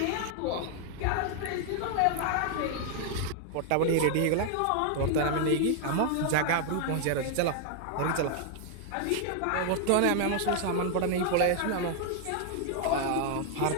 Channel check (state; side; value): different; both; correlation 0.00